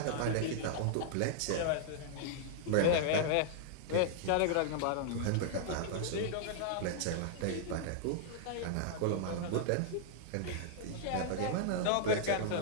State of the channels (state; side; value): different; both; correlation -0.01